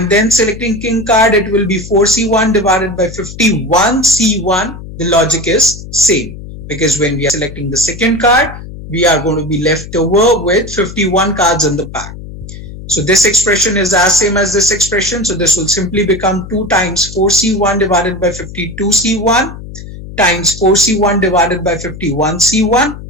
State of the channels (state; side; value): noise; left; hum, 13 dB below the sound